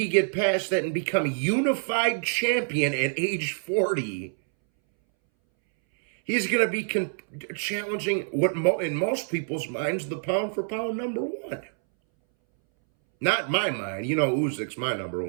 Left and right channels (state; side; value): silent; left; 61 dB below the other